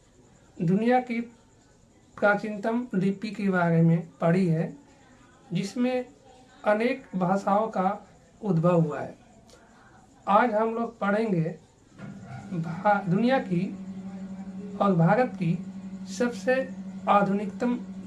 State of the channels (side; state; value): both; identical; correlation 1.00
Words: दुनिया की प्राचीनतम लिपि के बारे में पढ़ी है, जिसमें अनेक भाषाओं का उद्भव हुआ है। आज हम लोग पढ़ेंगे दुनिया की और भारत की सबसे आधुनिकतम